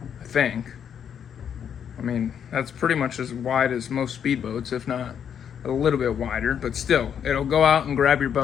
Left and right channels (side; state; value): right; quieter; 8.3 dB